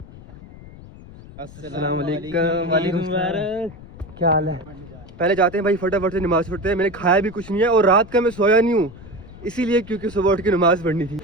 अस्सलाम वालेकुम। क्या हाल है? पहले जाते हैं भाई, फटाफट से नमाज पढ़ते हैं। मैंने खाया भी कुछ नहीं है और रात का मैं सोया नहीं हूँ इसीलिए क्योंकि सुबह उठ के नमाज पढ़नी थी।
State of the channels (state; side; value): noise; left; rumble, 18 dB below the sound